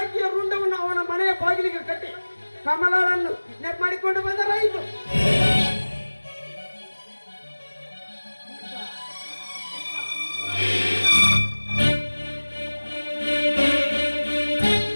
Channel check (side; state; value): both; inverted; correlation -1.00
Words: ರುಂಡವನ್ನು ಅವನ ಮನೆಯ ಬಾಗಿಲಿಗೆ ಕಟ್ಟಿ ಕಮಲನ್ನು ನೆಪ್ ಮಾಡಿಕೊಂಡು ಬಂದರಾಯಿತು.